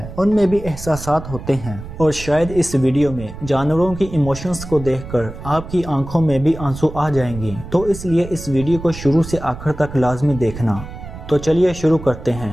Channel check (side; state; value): right; noise; rumble, 12 dB below the sound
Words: उनमें भी एहसासात होते हैं। और शायद इस वीडियो में जानवरों की इमोशंस को देखकर आपकी आंखों में भी आंसू आ जाएंगे, तो इसलिए इस वीडियो को शुरू से आखिर तक लाजमी देखना। तो चलिए शुरू करते